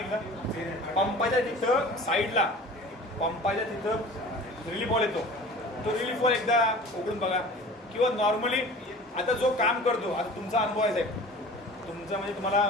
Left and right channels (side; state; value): both; normal; correlation 0.41